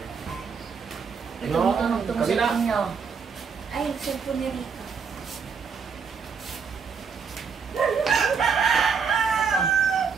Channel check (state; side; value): quieter; left; 5.9 dB